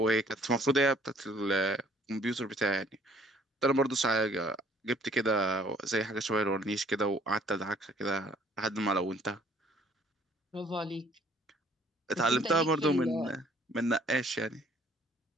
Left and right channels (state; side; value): normal; both; correlation 0.58